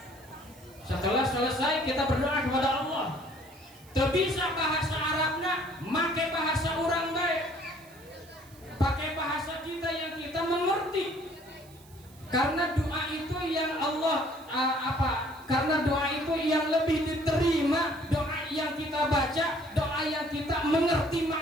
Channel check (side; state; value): right; noise; hiss, 25 dB below the sound